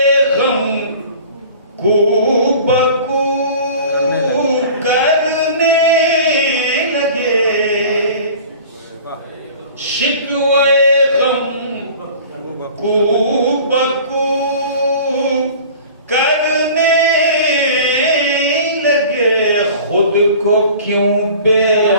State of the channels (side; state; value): both; inverted; correlation -0.43